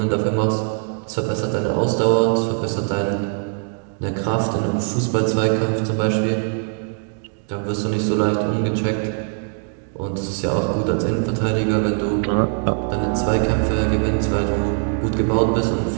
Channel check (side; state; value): left; silent; 55 dB below the other